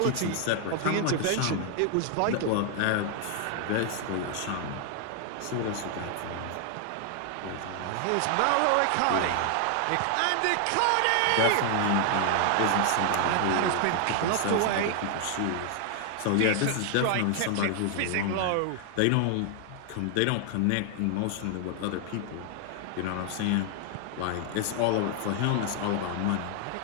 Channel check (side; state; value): both; different; correlation 0.00